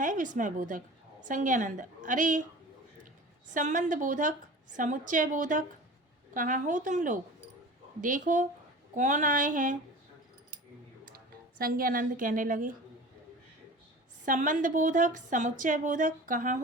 विस्मय बोधक? संज्ञानंद, अरे संबंध बोधक, समुच्चय बोधक, कहाँ हो तुम लोग? देखो कौन आए हैं। संज्ञानंद कहने लगे संबंध बोधक, समुच्चय बोधक, कहाँ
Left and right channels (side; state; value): both; normal; correlation 0.38